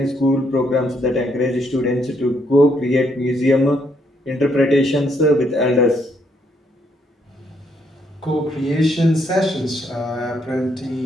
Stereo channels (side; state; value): both; normal; correlation 0.73